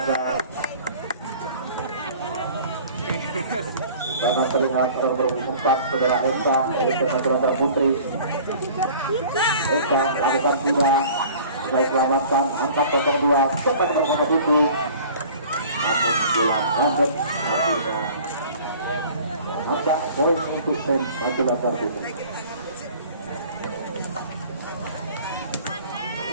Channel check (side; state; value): both; inverted; correlation -0.46